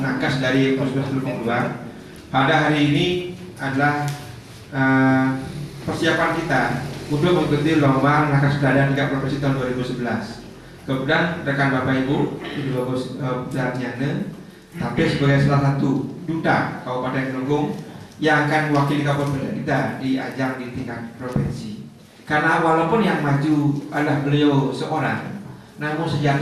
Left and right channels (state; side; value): identical; both; correlation 1.00